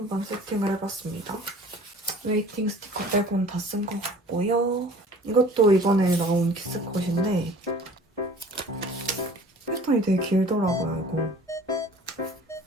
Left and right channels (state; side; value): normal; both; correlation 0.47